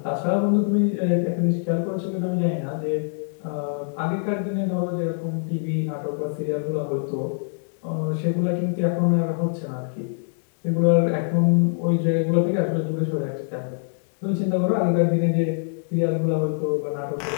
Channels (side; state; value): right; silent; digital silence